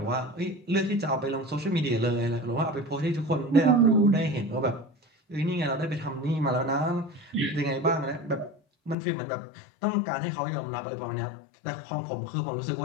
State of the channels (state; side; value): drops out; right; at 9.0 s